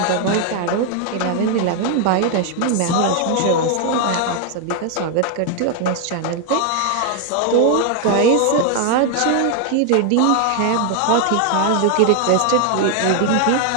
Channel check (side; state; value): both; different; correlation 0.00